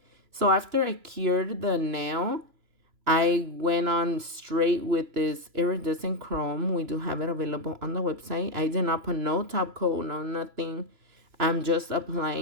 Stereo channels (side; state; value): left; late; 3.0 ms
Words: So after I cured the nail, I went on straight with this iridescent chrome. We do have it available on the website. I did not put no top coat, no nothing. I'm just